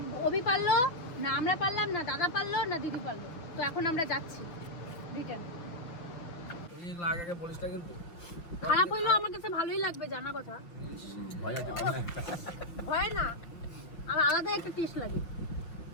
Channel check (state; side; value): late; right; 5.9 ms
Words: অভি পারলো, না আমরা পারলাম, না দাদা পারলো, না দিদি পারলো। তো এখন আমরা যাচ্ছি রিটার্ন। খারাপ হইলেও আমার কাছে ভালোই লাগবে, জানা কথা। ভয় না, আর আলাদা একটা টেস্ট লাগে।